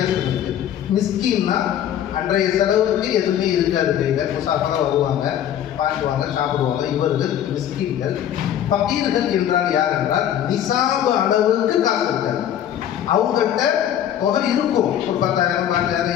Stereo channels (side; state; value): right; quieter; 10.5 dB